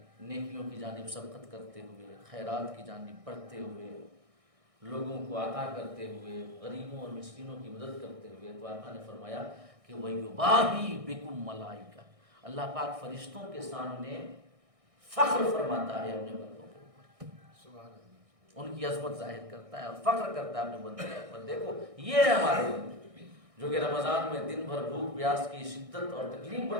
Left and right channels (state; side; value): late; left; 1.6 ms